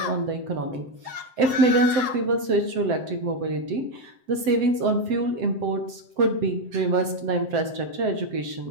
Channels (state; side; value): late; left; 7.7 ms